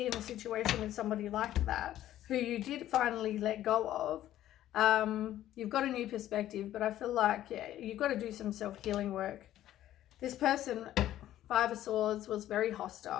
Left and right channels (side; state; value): right; quieter; 12.9 dB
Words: in a situation with somebody like that, who you did finally let go of. You've got a new perspective, but I feel like, you've got to do some self-healing work. This person, Five of Swords, was very